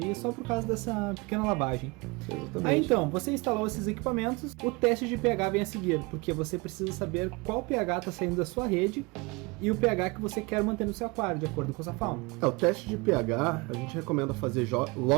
só por causa dessa pequena lavagem. Exatamente. Aí então, você instalou esses equipamentos, o teste de pH vem a seguir, porque você precisa saber qual pH está saindo da sua rede e o pH que você quer manter no seu aquário, de acordo com a sua fauna. O teste de pH a gente recomenda fazer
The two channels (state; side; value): quieter; left; 26.4 dB